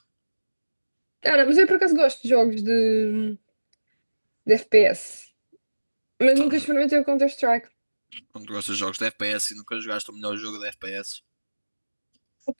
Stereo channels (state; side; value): inverted; both; correlation -1.00